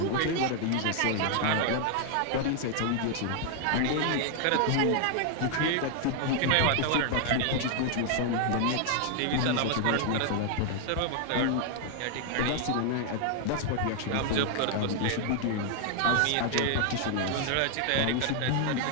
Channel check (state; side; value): different; both; correlation 0.00